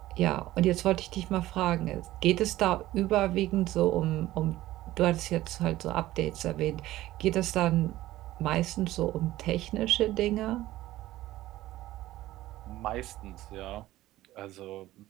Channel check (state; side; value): quieter; left; 15.8 dB